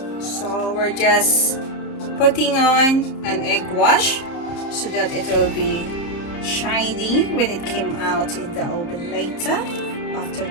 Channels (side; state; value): right; late; 30 ms